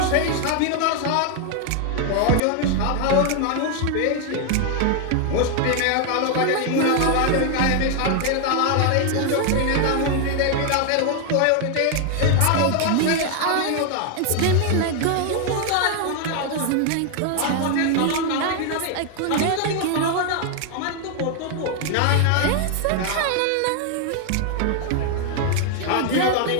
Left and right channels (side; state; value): both; different; correlation 0.00